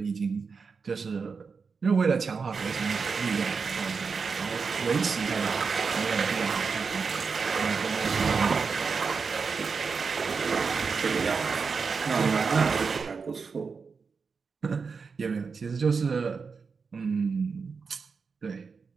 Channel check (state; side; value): quieter; left; 5.2 dB